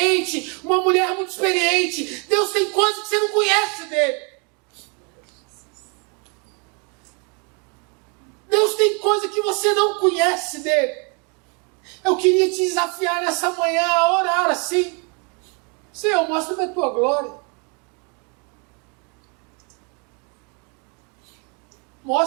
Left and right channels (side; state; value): left; quieter; 34.8 dB